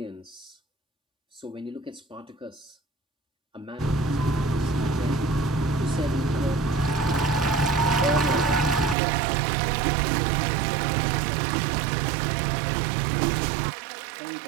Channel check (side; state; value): left; drops out; at 9.0 s